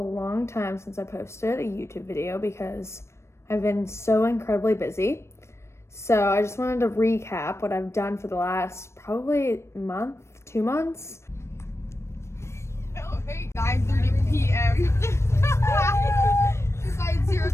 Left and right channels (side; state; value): right; late; 0.13 ms